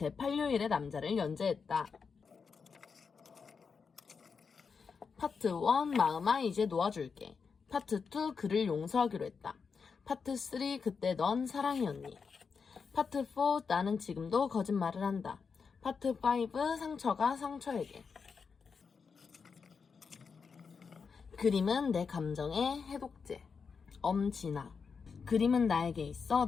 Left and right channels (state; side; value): quieter; right; 5.6 dB